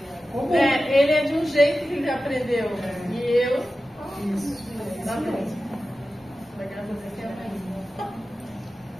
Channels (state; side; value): normal; both; correlation 0.94